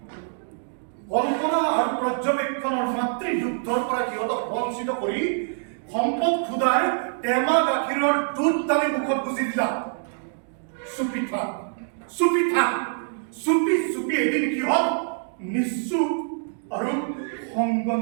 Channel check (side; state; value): left; silent; digital silence